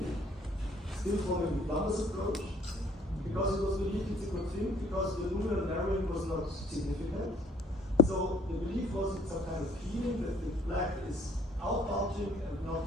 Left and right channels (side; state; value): both; normal; correlation 0.61